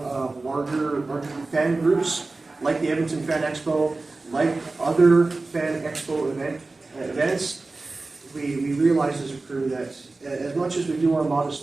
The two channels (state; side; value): quieter; left; 3.4 dB